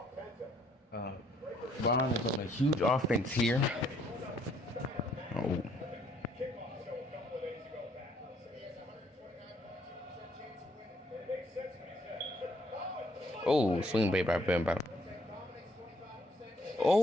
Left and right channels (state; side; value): normal; both; correlation 0.67